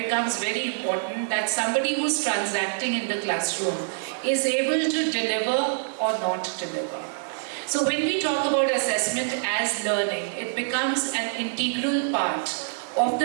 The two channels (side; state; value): left; silent; digital silence